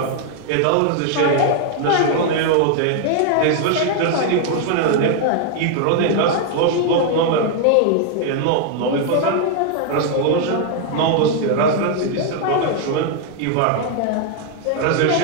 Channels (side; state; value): both; different; correlation 0.00